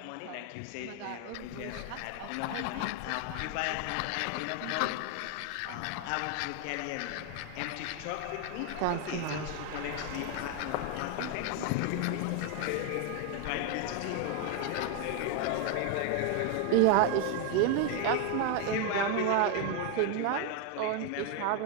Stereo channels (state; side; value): different; both; correlation 0.01